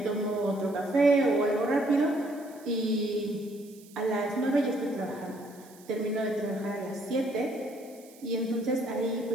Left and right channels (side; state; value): right; noise; hiss, 24 dB below the sound